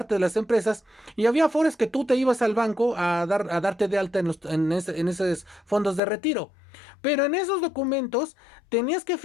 de las empresas y había afores que tú te ibas al banco a darte de alta en esos fondos de retiro. Pero en esos documentos tenías que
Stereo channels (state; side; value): drops out; right; at 6.0 s